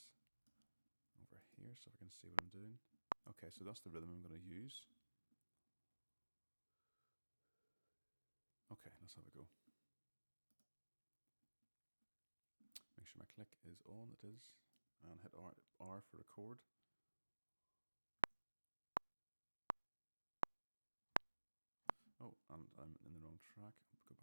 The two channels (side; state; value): both; inverted; correlation -1.00